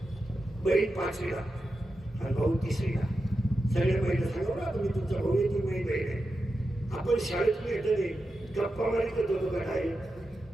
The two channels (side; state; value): both; normal; correlation 0.90